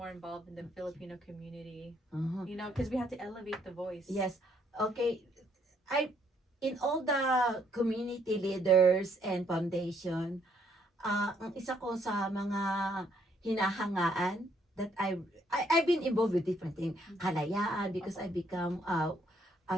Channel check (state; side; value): normal; both; correlation 0.69